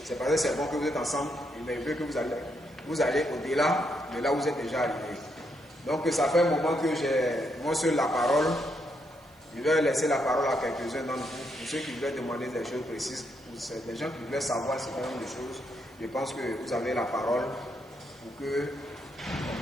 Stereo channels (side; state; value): right; noise; hiss, 30 dB below the sound